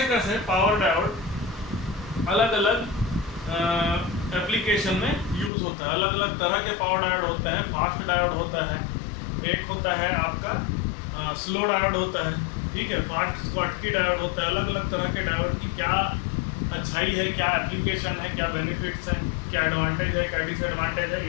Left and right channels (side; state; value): right; drops out; at 5.5 s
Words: कैसे पावर डायोड अलग अलग एप्लीकेशन में यूज़ होता है। अलग अलग तरह के पावर डायोड होते हैं। फास्ट डायोड होता है, एक होता है आपका स्लो डायोड होता है। ठीक है। फास्ट स्कॉटकी डायोड होता है। अलग अलग तरह के डायोड की क्या अच्छाई है, क्या एप्लीकेशन है, क्या बेनिफिट्स हैं, क्या एडवांटेज है, क्या डिसएडवांटेज है,